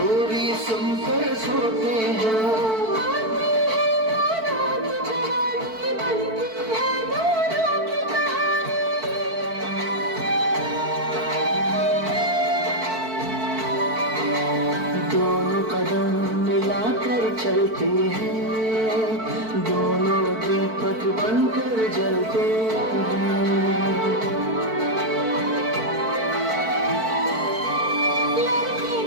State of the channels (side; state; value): left; late; 4.5 ms